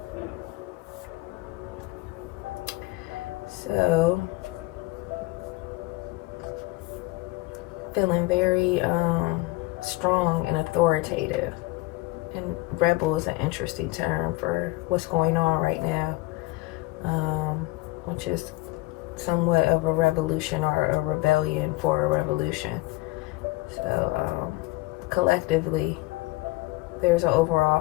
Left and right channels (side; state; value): right; quieter; 21.2 dB